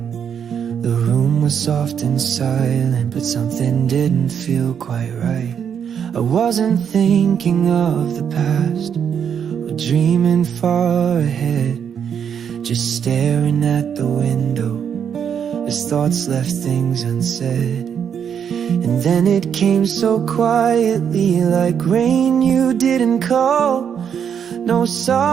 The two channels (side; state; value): left; quieter; 7.9 dB